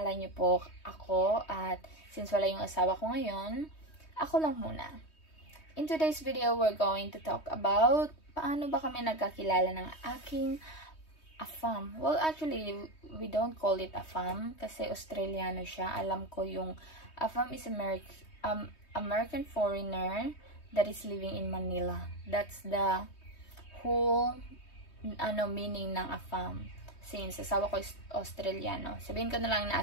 niyo po ako, at since wala yung asawa ko ngayon, ako lang muna. In today's video, we're going to talk about paano ba kami nagkakilala ng aking afam. Well, actually, we don't call it afam kasi Australiano siya. Alam ko yung afam is American foreigner that is living in Manila. That's the whole meaning ng afam. Since asawa ko is Australiano. Sabihin ko na lang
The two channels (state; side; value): late; right; 3.2 ms